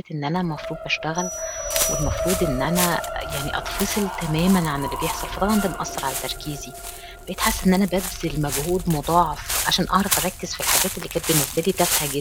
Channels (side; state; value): both; identical; correlation 1.00